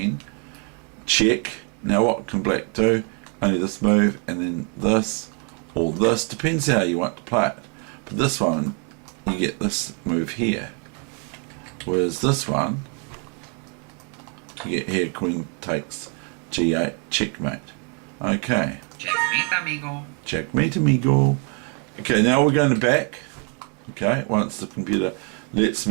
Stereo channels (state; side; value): quieter; left; 36.9 dB